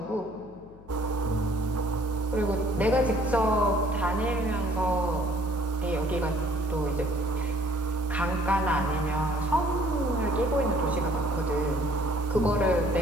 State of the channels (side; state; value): left; noise; hum, 21 dB below the sound